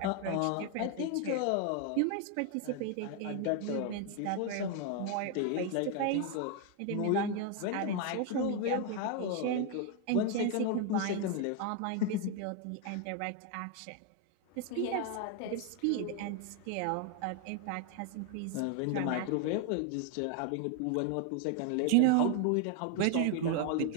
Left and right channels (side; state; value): both; different; correlation 0.01